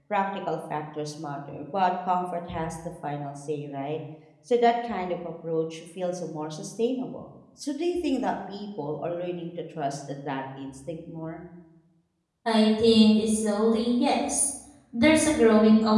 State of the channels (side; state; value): both; identical; correlation 1.00